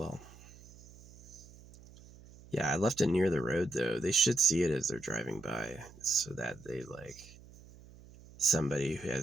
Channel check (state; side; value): noise; right; hum, 20 dB below the sound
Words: Yeah, I left it near the road though. They should see it as they're driving by so that they like somebody who